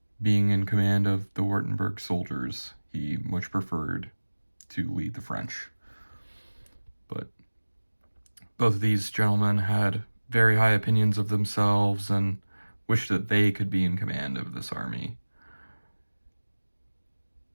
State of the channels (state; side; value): inverted; both; correlation -1.00